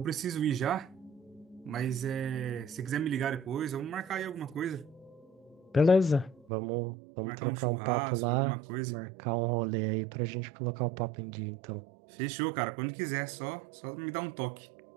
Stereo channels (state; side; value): drops out; left; at 6.5 s